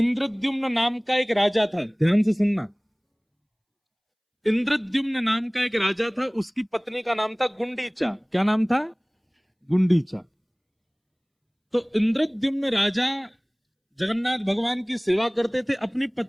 नाम का एक राजा था, ध्यान से सुनना। इंद्रद्युम्न नाम का एक राजा था, उसकी पत्नी का नाम था गुंडीचा। क्या नाम था? गुंडीचा। तो इंद्रद्युम्न राजा जगन्नाथ भगवान की सेवा करते थे, अपनी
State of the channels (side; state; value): both; identical; correlation 1.00